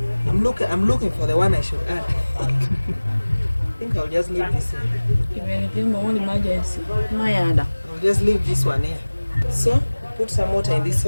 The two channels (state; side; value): inverted; both; correlation -1.00